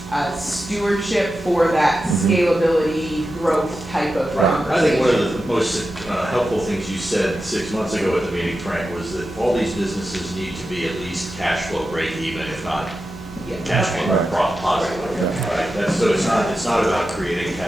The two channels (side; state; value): both; normal; correlation 0.91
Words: stewardship for that scalability, growth type of Right. I conversation. think one of the most helpful things you said 6 months ago at the meeting, Frank, was that all these businesses need to be at least cash flow break even, if not Yeah. cash flow Right. positive. Right? That's, so it's not about creating